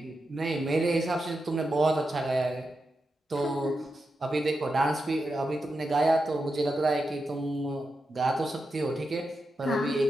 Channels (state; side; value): normal; both; correlation 0.88